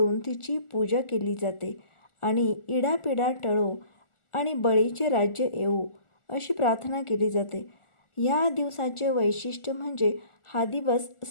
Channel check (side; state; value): right; late; 1.4 ms